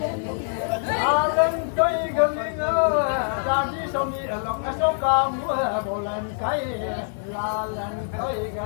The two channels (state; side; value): silent; right; digital silence